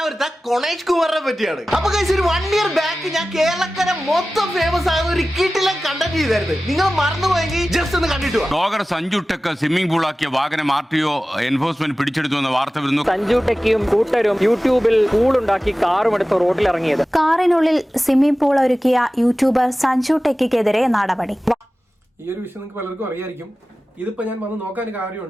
കൊണേഷ് കുമാറിനെ പറ്റിയാണ്. അപ്പൊ കഴിച്ച് ഒരു 1 year ബാക്ക് ഞാൻ കേരളക്കര മൊത്തം ഫേമസ് ആകുന്ന ഒരു കിട്ടിലെ കണ്ടന്റ് ചെയ്തായിരുന്നു. നിങ്ങൾ മറന്നുപോയെങ്കിൽ ജസ്റ്റ് ഒന്ന് കണ്ടിട്ട് ബ്ലോഗർ സഞ്ജു ടെക്ക് സ്വിമ്മിംഗ് പൂളാക്കിയ വാഹനം RTO എൻഫോഴ്സ്മെന്റ് പിടിച്ചെടുത്തു എന്ന വാർത്ത വരുന്നു. സഞ്ജു ടെക്കിയും കൂട്ടരും യൂട്യൂബിൽ പൂളുണ്ടാക്കി കാറും എടുത്ത് റോഡിൽ ഇറങ്ങിയത്. കാറിനുള്ളിൽ സ്വിമ്മിംഗ് പൂൾ ഒരുക്കിയ യൂട്യൂബർ സഞ്ജു ടെക്കിക്കെതിരെ നടപടി. ഈ ഒരു വിഷയം നിങ്ങൾക്ക് പലർക്കും അറിയായിരിക്കും. ഇതിപ്പോ ഞാൻ വന്ന് നോക്കാൻ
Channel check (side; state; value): both; normal; correlation 0.96